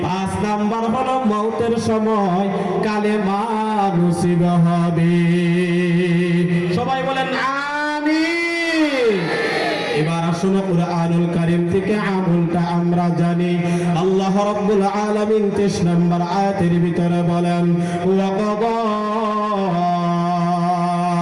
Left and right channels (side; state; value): both; identical; correlation 1.00